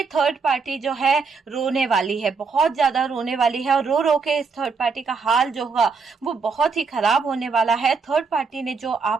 थर्ड पार्टी जो है रोने वाली है, बहुत ज्यादा रोने वाली है, और रो रो के इस थर्ड पार्टी का हाल जो होगा वो बहुत ही खराब होने वाला है। थर्ड पार्टी ने जो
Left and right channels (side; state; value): left; quieter; 4.9 dB